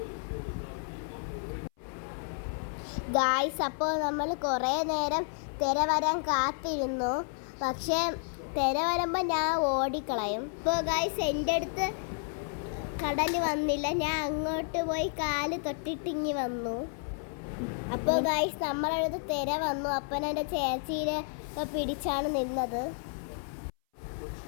ഗായ്സ്, അപ്പോൾ നമ്മൾ കുറേ നേരം തിര വരാൻ കാത്തിരുന്നു. പക്ഷേ തിര വരുമ്പോൾ ഞാൻ ഓടിക്കളയും. ഇപ്പോൾ ഗായ്സ്, എൻ്റെ അടുത്ത് കടൽ വന്നില്ല. ഞാൻ അങ്ങോട്ട് പോയി കാല് തൊട്ടിട്ടിങ്ങി വന്നു. അപ്പോൾ ഗായ്സ്, നമ്മളടുത്ത് തിര വന്നു. അപ്പം എൻ്റെ ചേച്ചീനെ പിടിച്ചാണ് നിന്നത്.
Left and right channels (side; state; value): right; silent; 57 dB below the other